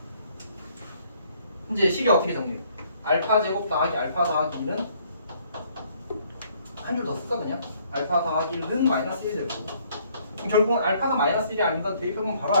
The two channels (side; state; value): both; inverted; correlation -0.64